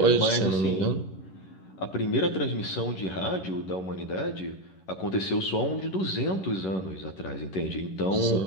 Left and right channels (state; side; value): late; right; 11 ms